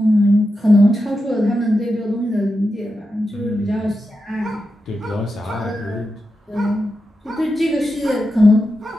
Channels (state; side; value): normal; both; correlation 0.89